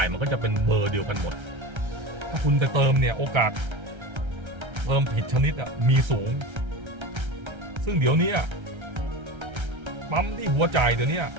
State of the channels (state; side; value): late; left; 1.3 ms